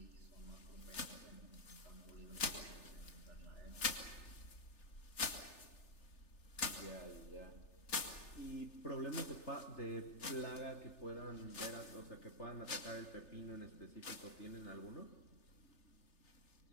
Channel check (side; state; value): right; late; 3.3 ms